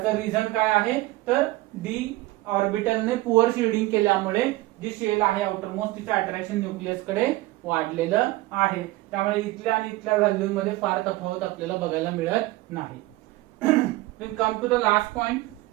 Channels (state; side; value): quieter; left; 19.2 dB